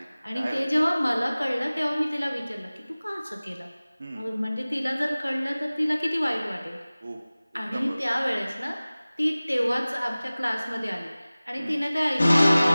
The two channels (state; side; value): inverted; both; correlation -0.99